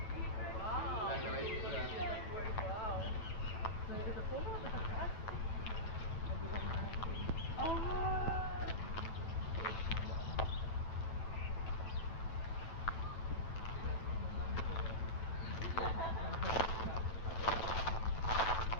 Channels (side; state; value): right; late; 9.2 ms